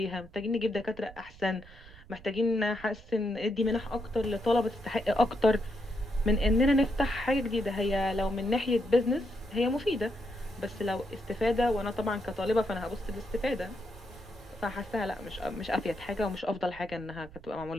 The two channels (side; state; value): right; noise; rumble, 19 dB below the sound